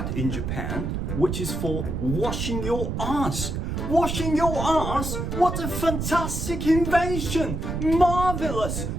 in Japan, which is for washing your ass.Washing your ass? What a fantastic invention! Marvelous!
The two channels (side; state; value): right; noise; rumble, 3 dB below the sound